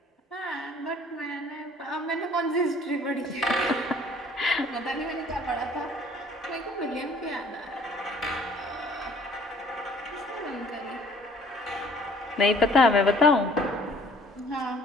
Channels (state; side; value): normal; both; correlation 0.55